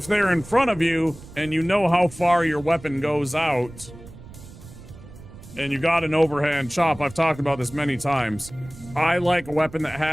they're in front of you and you know how far your weapon goes out and you got an overhand chop, I've talked about this many times. I like a weapon that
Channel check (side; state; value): right; noise; rumble, 18 dB below the sound